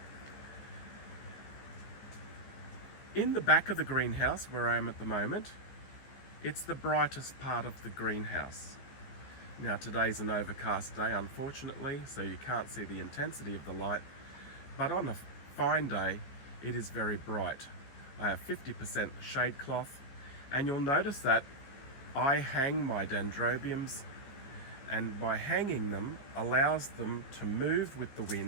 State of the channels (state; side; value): late; right; 15 ms